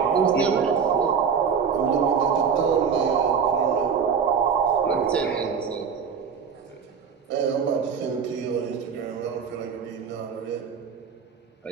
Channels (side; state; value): left; quieter; 6.6 dB